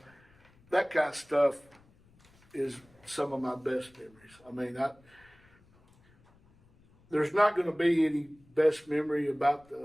that kind of stuff is some of my best memories. There's not going to be any best memory about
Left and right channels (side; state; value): left; noise; rumble, 30 dB below the sound